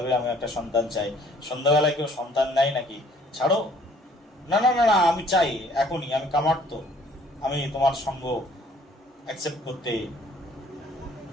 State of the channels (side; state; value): both; normal; correlation 0.58